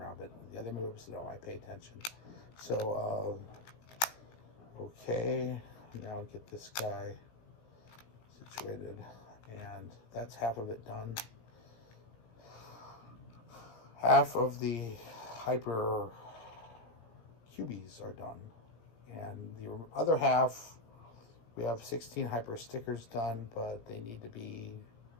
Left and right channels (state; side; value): late; right; 17 ms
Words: but the other moves, no, I pay attention. So, okay, now get this guy situated, and that's half of it done. Half of the hyper cubies are done, and the other half, we have 16 hyper stickers done, but they need to be